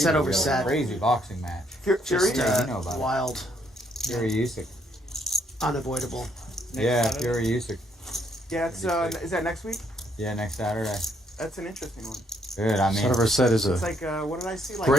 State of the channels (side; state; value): both; normal; correlation 0.71